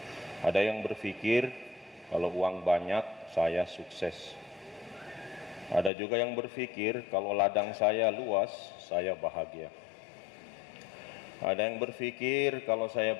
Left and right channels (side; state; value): right; drops out; at 5.9 s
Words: Ada yang berpikir, kalau uang banyak, saya sukses. Ada juga yang berpikir, kalau ladang saya luas, saya bahagia. Ada yang berpikir, kalau saya